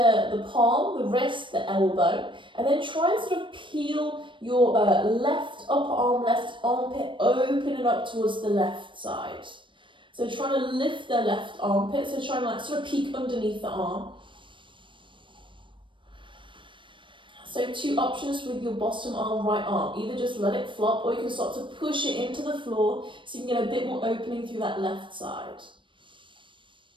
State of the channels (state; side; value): late; left; 0.24 ms